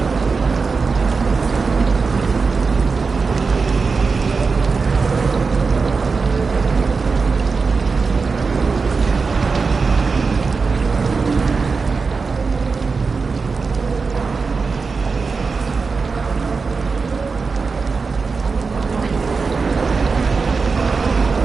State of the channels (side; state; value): left; quieter; 4.6 dB